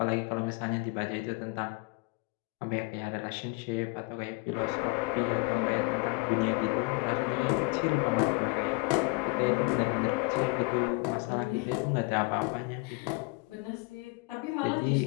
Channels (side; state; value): right; quieter; 27.6 dB